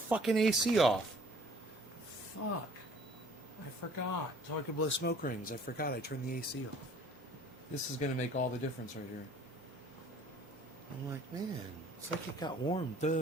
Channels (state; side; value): normal; both; correlation 0.54